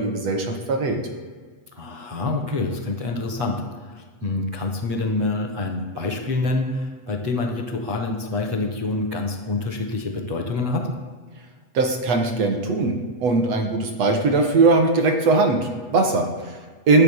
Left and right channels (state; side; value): late; left; 8.2 ms